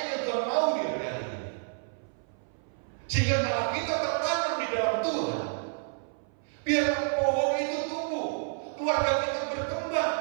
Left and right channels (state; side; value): silent; left; 57 dB below the other